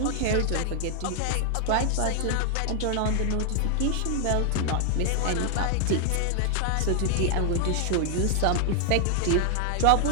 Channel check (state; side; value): different; both; correlation 0.00